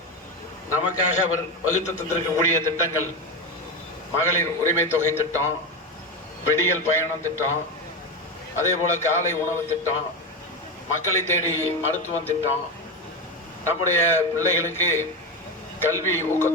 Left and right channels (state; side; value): normal; both; correlation 0.17